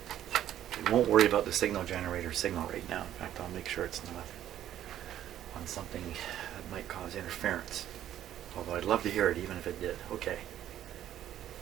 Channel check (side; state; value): left; quieter; 11.6 dB